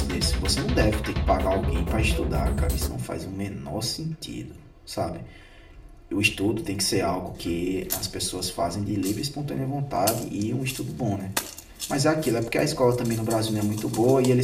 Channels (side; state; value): both; identical; correlation 1.00